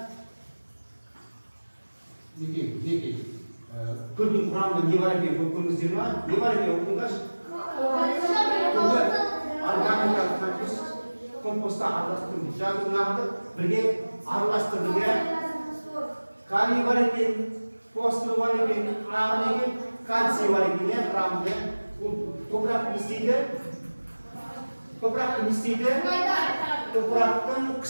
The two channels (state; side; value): inverted; both; correlation -1.00